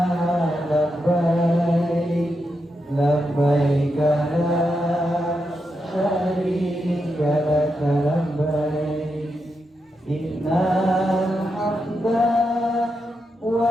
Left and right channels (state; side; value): normal; both; correlation 0.85